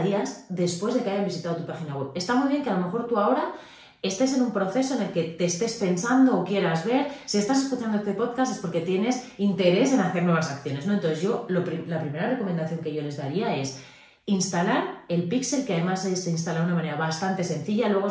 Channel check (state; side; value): identical; both; correlation 1.00